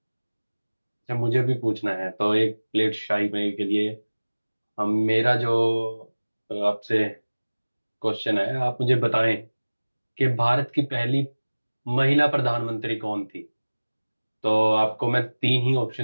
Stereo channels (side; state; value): both; inverted; correlation -1.00